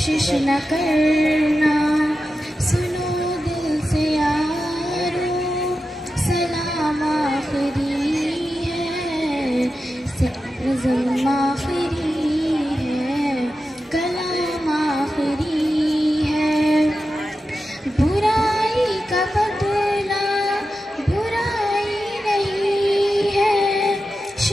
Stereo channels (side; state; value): both; normal; correlation 0.91